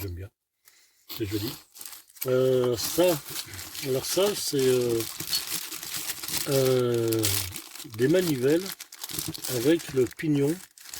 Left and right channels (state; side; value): identical; both; correlation 1.00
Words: bien, c'est joli. Alors ça c'est des manivelles avec le pignon